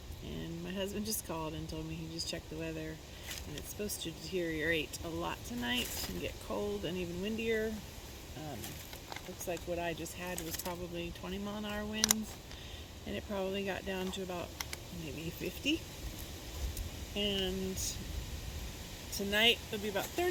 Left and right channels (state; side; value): identical; both; correlation 1.00